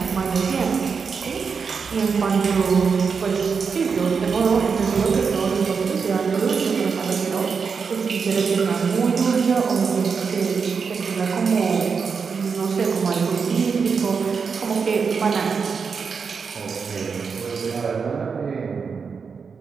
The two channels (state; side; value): quieter; left; 5.6 dB